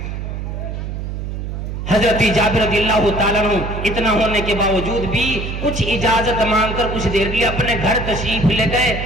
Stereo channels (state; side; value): noise; right; hum, 5 dB below the sound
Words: حضرت جابر رضی اللہ تعالیٰ عنہ اتنا ہونے کے باوجود بھی کچھ اجازت مانگ کر کچھ دیر کے لیے اپنے گھر تشریف لے گئے